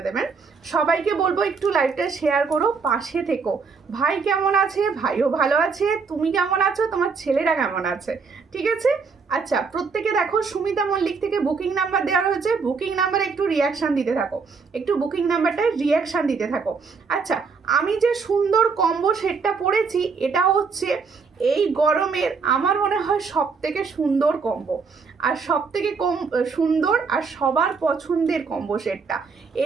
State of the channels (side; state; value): left; quieter; 5.1 dB